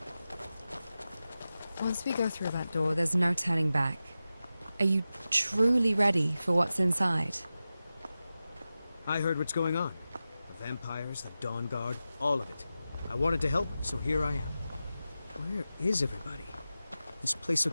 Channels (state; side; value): inverted; both; correlation -0.94